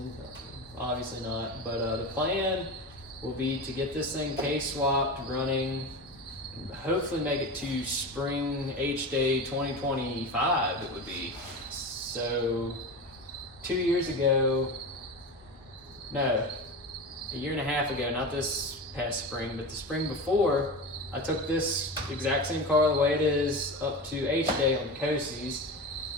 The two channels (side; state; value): both; normal; correlation 0.26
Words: obviously not. But the plan will be to get this thing K-swapped, running, and hopefully make it to spring H-Day 2025 it would be. So 2 years ago, no, a year and a half ago, not this past spring, but the spring before, I took this exact same car the way it is up to H-Day on Coasies,